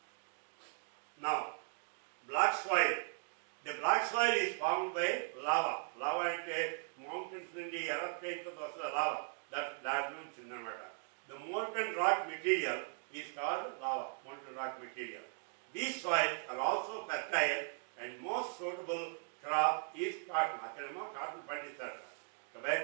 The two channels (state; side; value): silent; left; 52 dB below the other